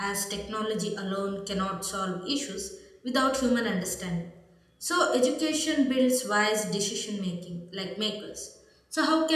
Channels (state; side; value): identical; both; correlation 1.00